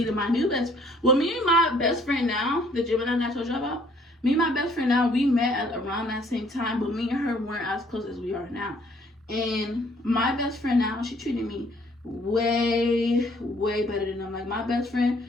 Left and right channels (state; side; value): normal; both; correlation 0.61